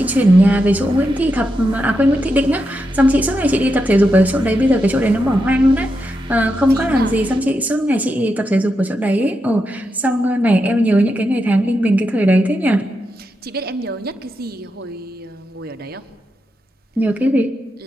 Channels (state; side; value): normal; both; correlation 0.86